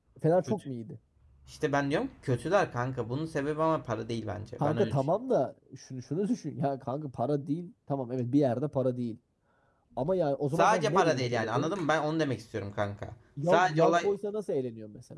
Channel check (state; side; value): identical; both; correlation 1.00